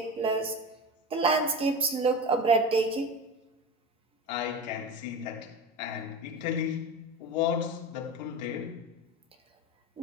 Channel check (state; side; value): normal; both; correlation 0.27